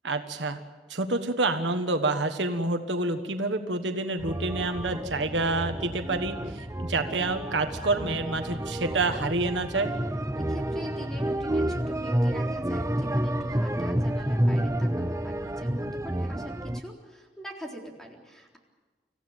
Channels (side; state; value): both; normal; correlation 0.48